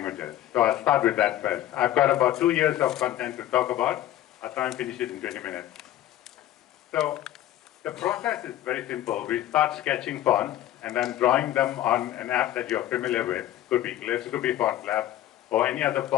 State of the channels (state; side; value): quieter; right; 13.2 dB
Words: So I'll start with that first. I've got about 2 years of content to talk about. I'll try and finish it in 20 minutes. So the process is very simple. We start sketching fonts and then drawing them on an app that you're familiar with. Could be Glyphs, could be Font Lab, or any other